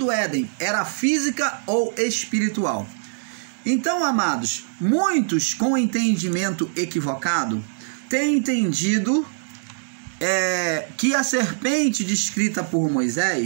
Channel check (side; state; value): left; silent; digital silence